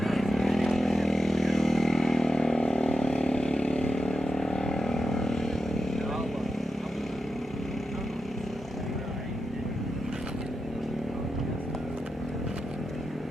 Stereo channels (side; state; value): both; normal; correlation 0.89